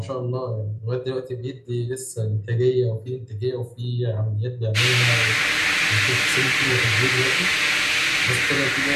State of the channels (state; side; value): identical; both; correlation 1.00